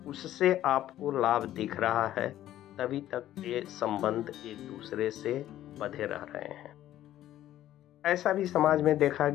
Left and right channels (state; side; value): quieter; right; 13.0 dB